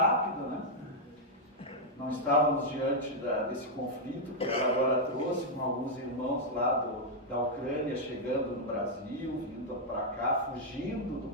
né? Não estávamos diante desse conflito que ela agora trouxe, com alguns irmãos lá da Ucrânia chegando no Brasil, vindo para cá, fugindo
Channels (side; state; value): both; normal; correlation -0.03